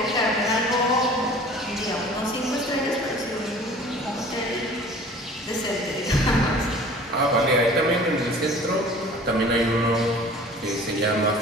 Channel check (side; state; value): both; normal; correlation 0.46